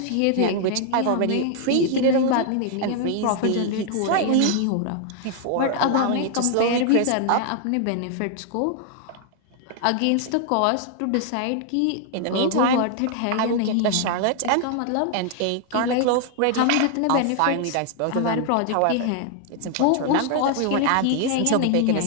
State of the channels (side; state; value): both; different; correlation 0.00